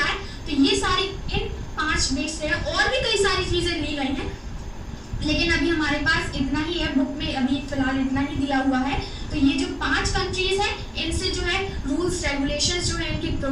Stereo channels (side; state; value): both; identical; correlation 1.00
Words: तो ये सारी इन 5 बेस से है, और भी कई सारी चीजें ली गई हैं, लेकिन अभी हमारे पास इतना ही है, बुक में अभी फिलहाल इतना ही दिया हुआ है। तो ये जो 5 कंट्रीज है इनसे जो है रूल्स रेगुलेशंस जो है, इनकी